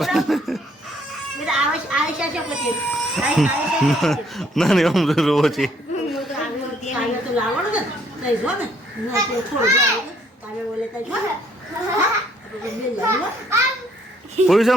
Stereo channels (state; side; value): normal; both; correlation 0.65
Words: આયશા છે પછી ના નહીં અમરો રોવો છે કાલે તો લાવવાનું ને તઈ જો ને થોડું કાલે બોલે તઈ જો પૂર્વે